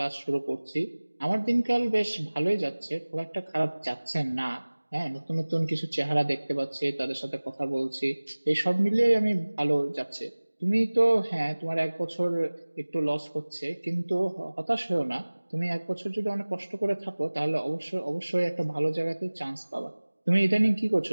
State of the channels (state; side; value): inverted; both; correlation -1.00